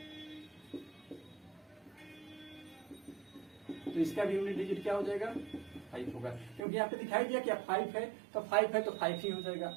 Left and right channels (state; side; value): drops out; left; at 6.6 s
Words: तो इसका भी यूनिट डिजिट क्या हो जाएगा 5 होगा, क्योंकि यहाँ पे दिखाई दिया क्या 5 है, तो 5 है तो 5 ही हो जाएगा।